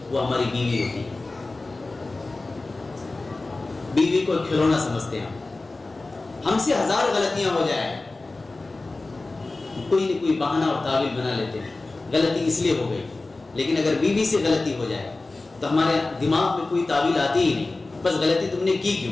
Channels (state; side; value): quieter; right; 3.3 dB